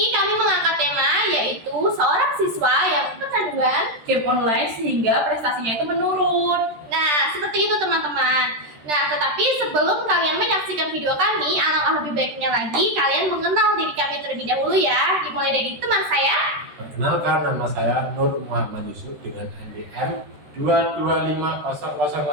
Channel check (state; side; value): late; left; 13 ms